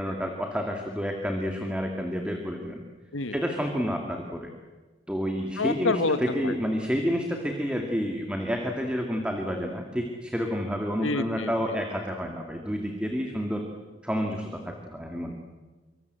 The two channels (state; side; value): normal; both; correlation 0.68